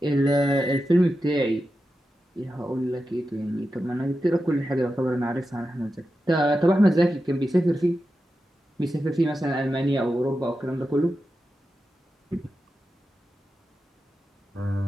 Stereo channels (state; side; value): normal; both; correlation 0.91